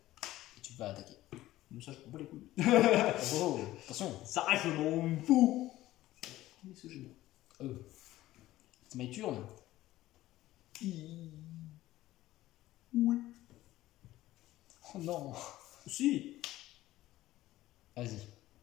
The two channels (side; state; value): right; quieter; 15.6 dB